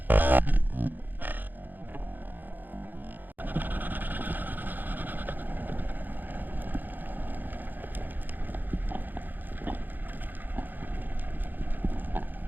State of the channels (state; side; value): late; left; 0.087 ms